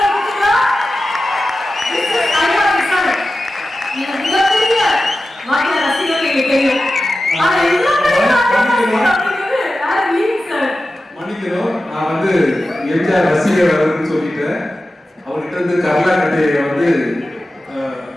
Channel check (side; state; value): both; normal; correlation 0.94